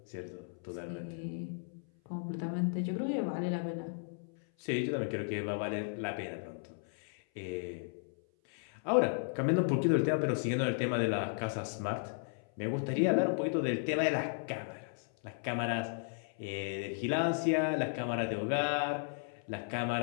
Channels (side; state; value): right; silent; 55 dB below the other